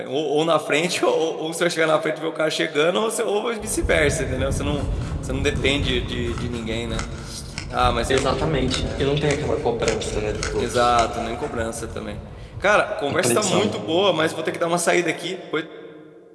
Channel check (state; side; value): identical; both; correlation 1.00